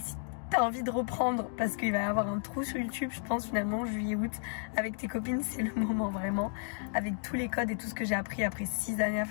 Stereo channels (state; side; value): silent; right; 56 dB below the other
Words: t'as envie de reprendre, parce qu'il va y avoir un trou sur YouTube, je pense finalement juillet-août avec tes copines, c'est le moment vraiment, avec tous les codes et tout ce que j'ai appris après 6 années à